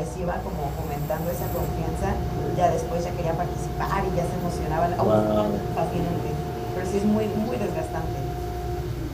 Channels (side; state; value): both; identical; correlation 1.00